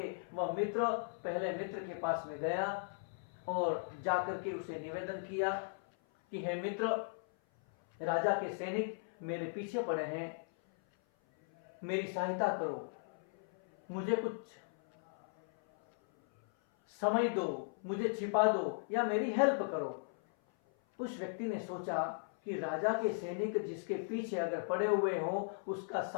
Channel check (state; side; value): silent; right; 53 dB below the other